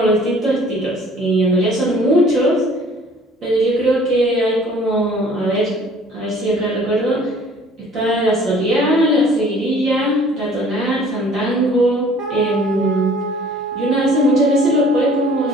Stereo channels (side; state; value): both; normal; correlation 0.53